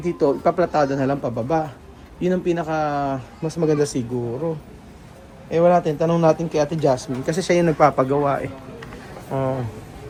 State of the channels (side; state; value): both; identical; correlation 1.00